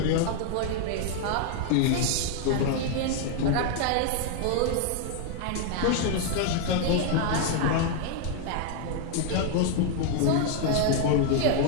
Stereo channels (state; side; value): different; both; correlation 0.00